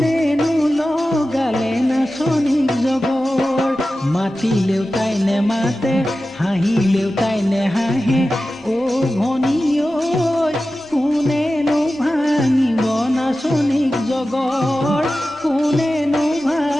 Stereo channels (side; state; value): both; normal; correlation 0.94